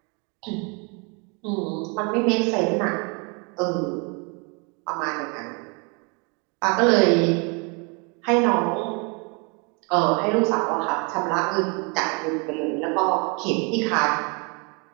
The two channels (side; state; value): left; quieter; 33.0 dB